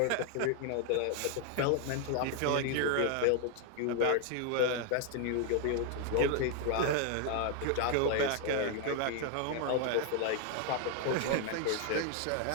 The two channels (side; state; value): both; different; correlation 0.00